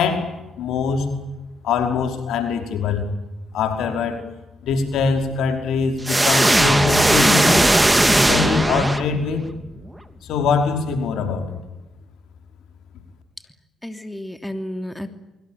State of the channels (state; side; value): normal; both; correlation 0.82